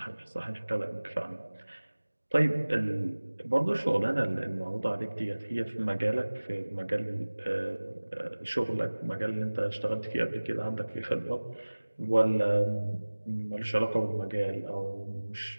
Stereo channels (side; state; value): both; inverted; correlation -1.00